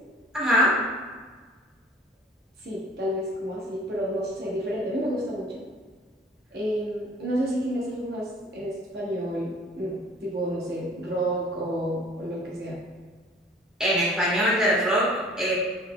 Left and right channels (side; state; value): both; normal; correlation 0.49